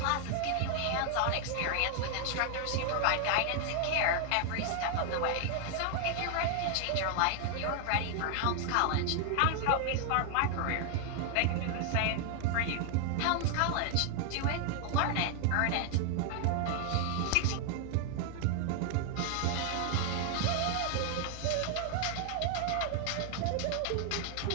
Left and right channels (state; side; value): different; both; correlation 0.00